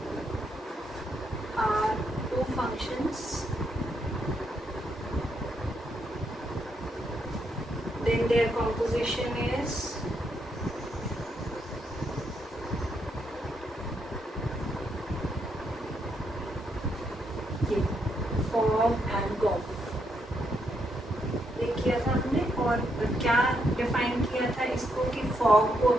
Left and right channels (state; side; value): normal; both; correlation 0.78